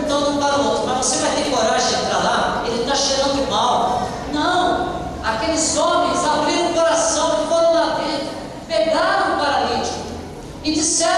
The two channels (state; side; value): identical; both; correlation 1.00